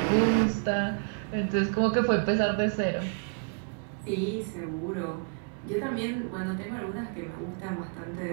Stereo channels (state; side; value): quieter; left; 40.0 dB